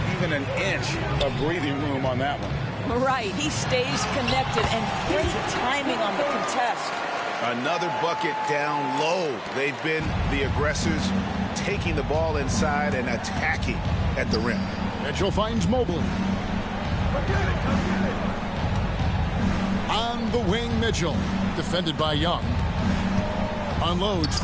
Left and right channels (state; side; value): identical; both; correlation 1.00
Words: even an inch of breathing room on that one. Right. He stays connected and great timing on the contest. Another bucket down low. They've been the aggressors, taking the ball inside and attacking at the rim. Mitchell finds Mobley. On the wing, Mitchell. Defended by Young. Unloads